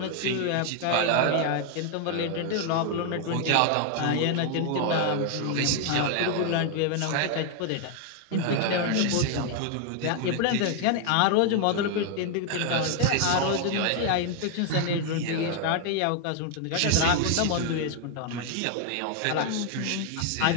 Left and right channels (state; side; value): different; both; correlation 0.00